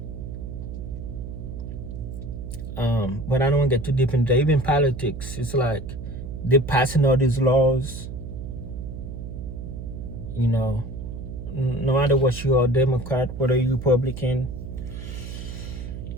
But I don't want to get too deep into that. Even politics, it's like they're passing all these laws. You know, no matter what you are, Democrat, whether you Republican,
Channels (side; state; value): right; noise; hum, 8 dB below the sound